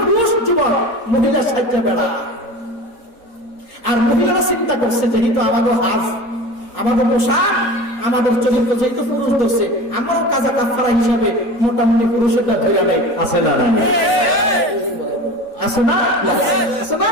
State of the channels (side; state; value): right; late; 3.9 ms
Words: যুবক মহিলা সাজ্জা বেড়া। আর মহিলারা চিন্তা করছে যেহেতু আমাদের হাজ, আমাদের পোশাক, আমাদের চরিত্র যেহেতু পুরুষ ধরছে, আমরাও কাজা কাফারা হিসাবে মোটামুটি পুরুষেরটা ধরে নেই। আছে না? আছে না? আছে না?